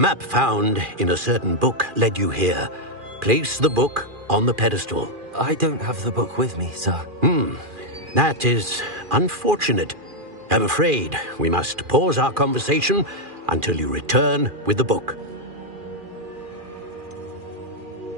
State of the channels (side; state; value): left; late; 2.4 ms